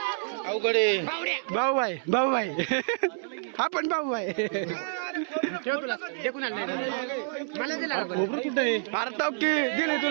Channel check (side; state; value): left; silent; 59 dB below the other